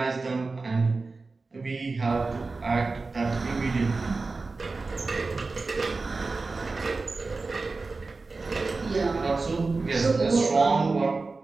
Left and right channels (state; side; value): quieter; left; 3.8 dB